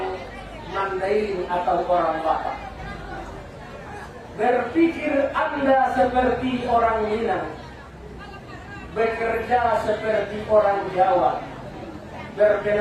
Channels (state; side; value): identical; both; correlation 1.00